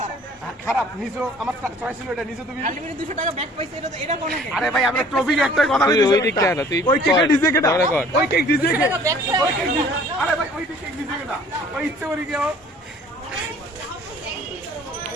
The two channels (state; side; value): normal; both; correlation 0.52